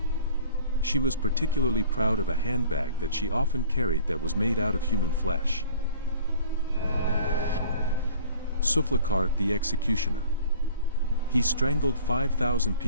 She was particularly proud of a handbag that she often carried that was made out of human flesh. Sulfikar the executioner. He strangled 5,000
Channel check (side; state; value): both; inverted; correlation -0.49